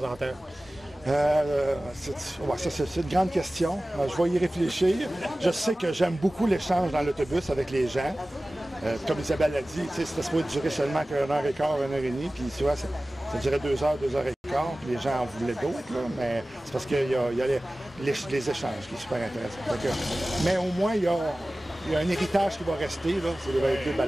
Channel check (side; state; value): both; normal; correlation 0.97